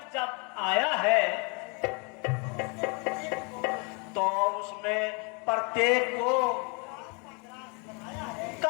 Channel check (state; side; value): quieter; right; 33.8 dB